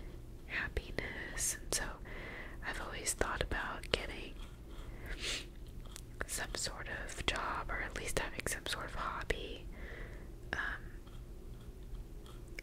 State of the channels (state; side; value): identical; both; correlation 1.00